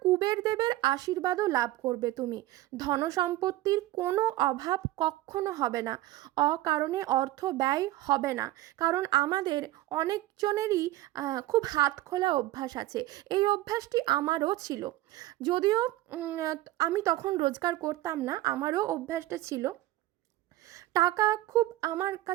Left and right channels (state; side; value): quieter; left; 16.3 dB